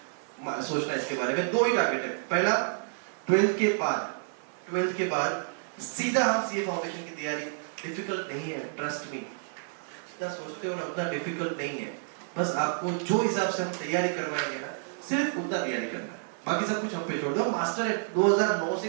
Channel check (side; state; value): left; silent; 58 dB below the other